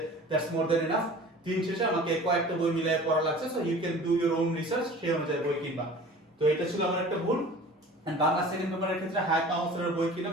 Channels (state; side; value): normal; both; correlation 0.43